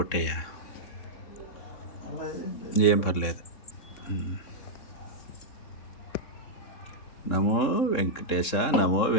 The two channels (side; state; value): right; late; 3.6 ms